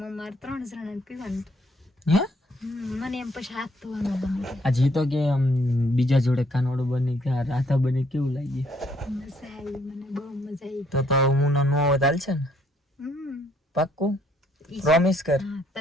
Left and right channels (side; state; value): both; normal; correlation 0.67